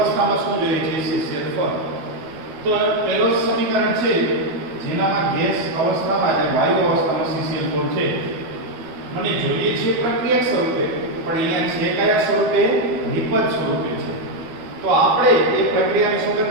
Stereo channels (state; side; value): late; left; 12 ms